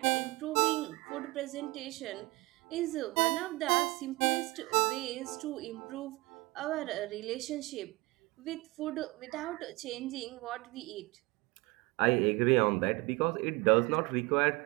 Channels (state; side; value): quieter; left; 23.3 dB